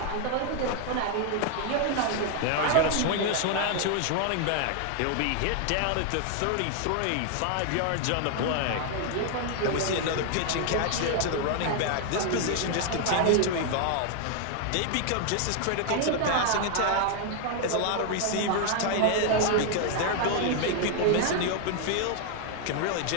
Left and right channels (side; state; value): both; different; correlation 0.00